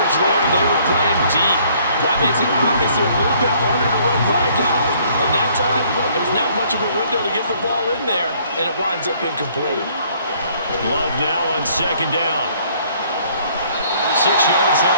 there. They were playing deep. That makes it obviously a little bit harder to run by guys. And that time, there's not much of a window to get the ball in there, and it winds up incomplete. Love now on 2nd down. 6 yards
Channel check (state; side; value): inverted; both; correlation -0.61